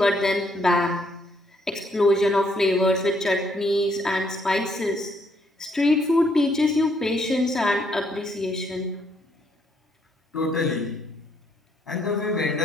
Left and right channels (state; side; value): normal; both; correlation 0.71